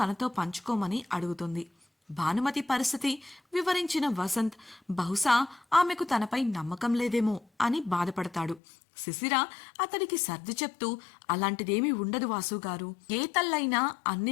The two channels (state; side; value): drops out; right; at 8.6 s